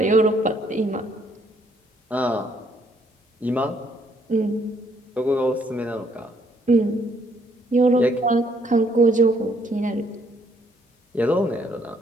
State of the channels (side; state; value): both; normal; correlation 0.68